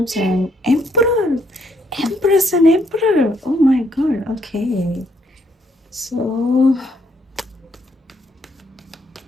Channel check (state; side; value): normal; both; correlation 0.72